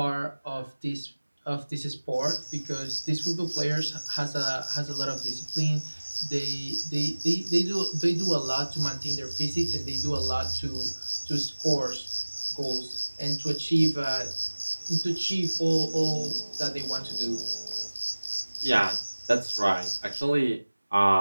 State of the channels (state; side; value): inverted; both; correlation -1.00